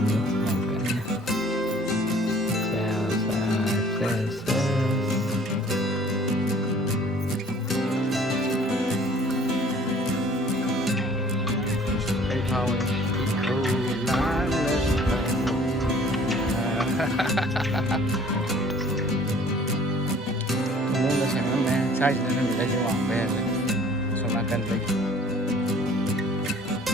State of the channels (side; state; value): both; normal; correlation 0.52